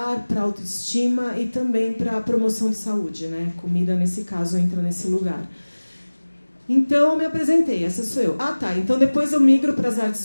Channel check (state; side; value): inverted; both; correlation -1.00